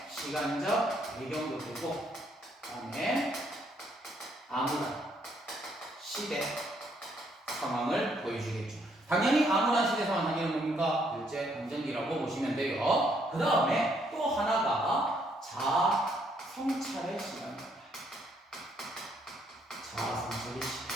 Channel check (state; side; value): normal; both; correlation 0.70